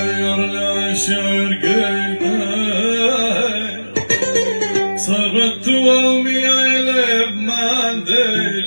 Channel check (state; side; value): inverted; both; correlation -1.00